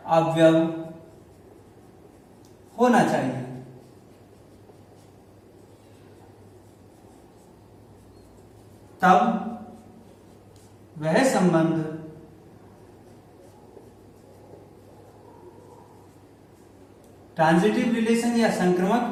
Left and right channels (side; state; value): both; identical; correlation 1.00